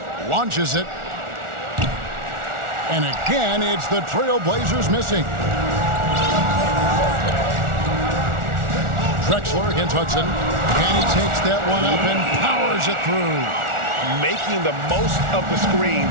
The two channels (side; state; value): left; late; 1.4 ms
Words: Launches it. And again, it's the Trailblazers missing. Drexler against Hudson. And he takes that one up and powers it through. Making the most of the screen,